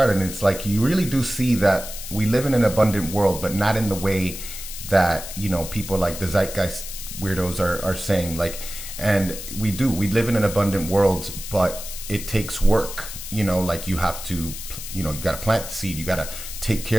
And it's like, you really do see that we live in an abundant world, but not in the way that, you know, people like the zeitgeist weirdos are saying. Like, and we live in an abundant world, but it takes work. You know, like, you have to, you know, you got to plant the seed, you got to take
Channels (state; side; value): noise; left; hiss, 10 dB below the sound